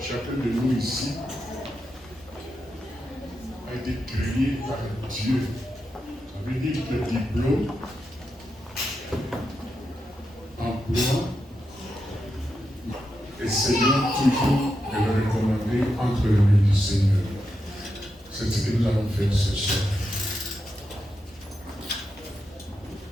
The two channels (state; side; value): normal; both; correlation 0.86